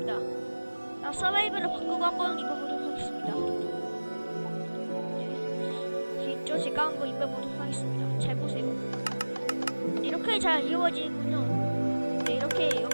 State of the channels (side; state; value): both; inverted; correlation -1.00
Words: 나 서바이벌을 바꾸고 한번 입어보도록 하겠습니다. 네, 있죠? 제가 한번 입어보도록 하겠습니다. 잘 보세요. 이렇게 잘 이루어지는군요. 네, 이렇게